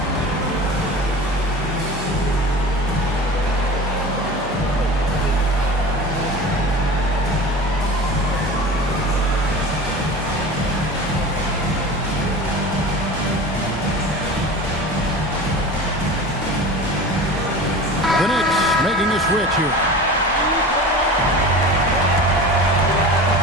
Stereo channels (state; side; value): normal; both; correlation 0.35